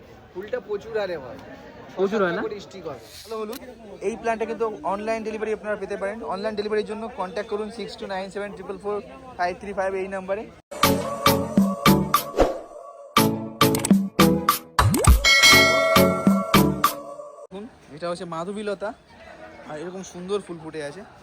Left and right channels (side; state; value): both; identical; correlation 1.00